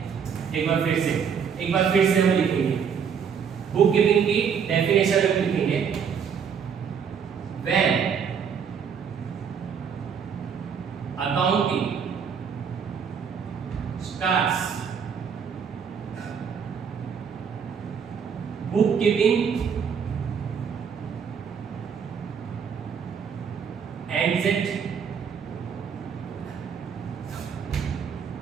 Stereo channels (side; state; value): left; quieter; 7.0 dB